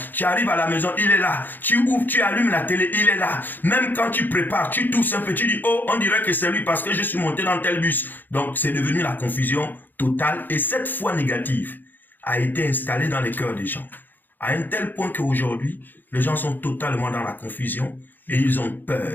Tu arrives à la maison, il est là. Tu ouvres, tu allumes la télé, il est là. Même quand tu prépares, tu tousses un peu, tu dis, oh, on dirait que c'est lui parce que je suis monté dans tel bus. Donc, c'est devenu la confusion totale. Et cette foi négative a été installée dans les cœurs des gens. À un tel point qu'aujourd'hui, les gens sont totalement dans la confusion et ils ont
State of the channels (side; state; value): right; late; 0.089 ms